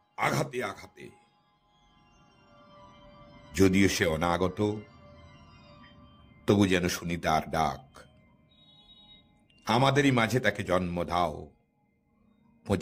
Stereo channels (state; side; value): identical; both; correlation 1.00